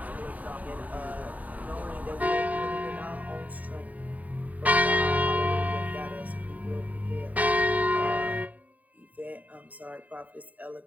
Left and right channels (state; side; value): late; left; 0.074 ms